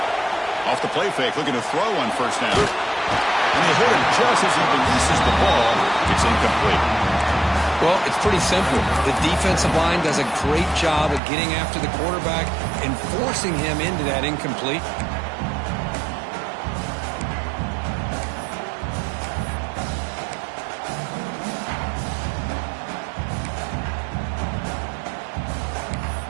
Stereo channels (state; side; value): drops out; left; at 11.2 s